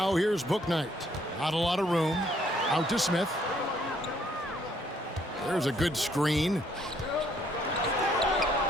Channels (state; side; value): normal; both; correlation 0.67